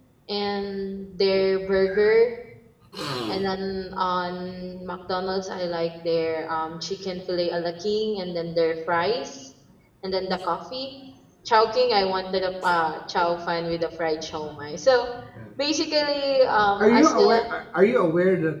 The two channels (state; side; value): identical; both; correlation 1.00